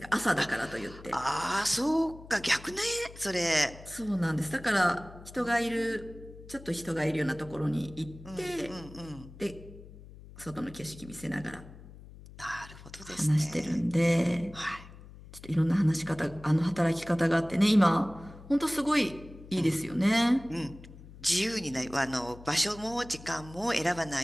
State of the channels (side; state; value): left; noise; hum, 18 dB below the sound